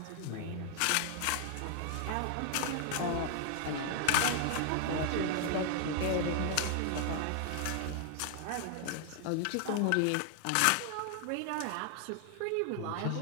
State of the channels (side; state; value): both; different; correlation 0.00